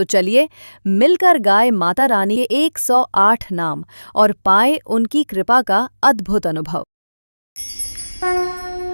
चलिए मिलकर गाए माता रानी के 108 नाम और पाए उनकी कृपा का अद्भुत अनुभव।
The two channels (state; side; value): inverted; both; correlation -1.00